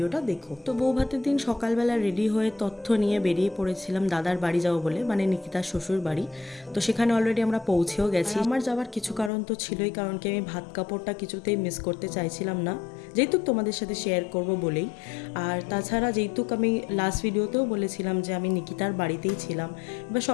দেখো। তো বউ ভাতের দিন সকালবেলা রেডি হয়ে তথ্য নিয়ে বেরিয়ে পড়েছিলাম দাদার বাড়ি যাবো বলে, মানে নিকিতার শ্বশুর বাড়ি। তো সেখানে অলরেডি আমরা পৌঁছেও গেছি। আমার যাওয়ার কিছু কারণ তো ছিলই, কারণ কি আমি ভাত কাপড়টা কিছুতেই মিস করতে চাইছিলাম না, যেহেতু তোমাদের সাথে শেয়ার করব বলেই। আর তাছাড়া যেহেতু আমি লাস্ট ভিডিওতেও বলেছিলাম যে আমি নিকিতার বাড়িতেই ছিলাম, এবার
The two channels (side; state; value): right; drops out; at 9.3 s